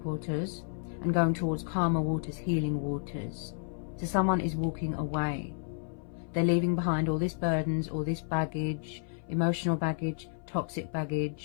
waters and going towards calmer waters, healing waters. So someone is walking away. They're leaving behind all this burdens, all this baggage, emotional baggage, toxic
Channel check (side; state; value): right; silent; 56 dB below the other